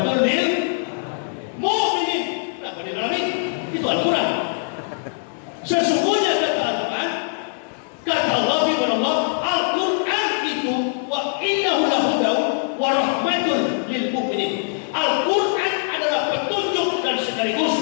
lil mu'minin. Apa di dalam ini? Itu Al-Quran. Sesungguhnya kata Al-Quran, kata Allah firman Allah, Al-Quran itu wa innahu lahuda wa rahmatul lil mu'minin. Al-Quran adalah petunjuk dan sekaligus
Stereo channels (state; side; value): silent; right; digital silence